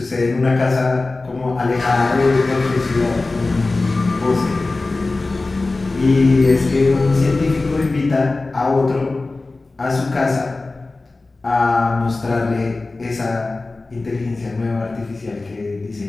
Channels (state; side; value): quieter; right; 3.3 dB